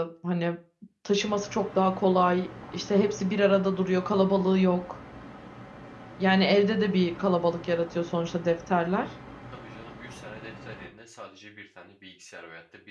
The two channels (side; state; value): both; identical; correlation 1.00